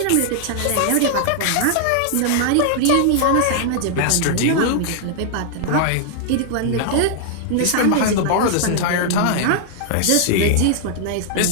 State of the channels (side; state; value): both; different; correlation -0.01